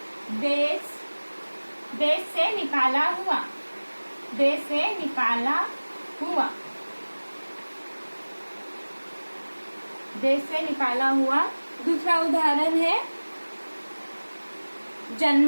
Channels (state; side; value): inverted; both; correlation -1.00